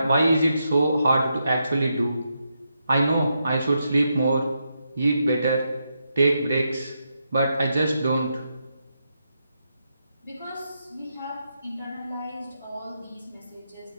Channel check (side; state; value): both; inverted; correlation -0.83